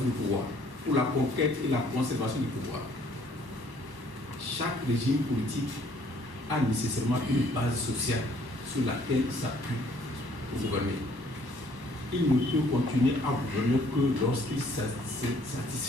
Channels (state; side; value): late; left; 1.0 ms